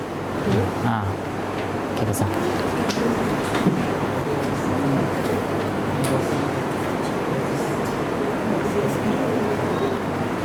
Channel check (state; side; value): identical; both; correlation 1.00